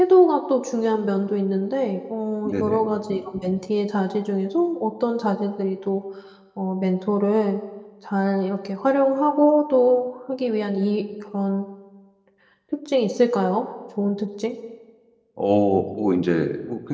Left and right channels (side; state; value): both; identical; correlation 1.00